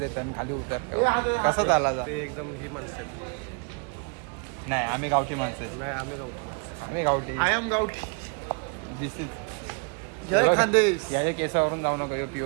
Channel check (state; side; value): quieter; left; 36.6 dB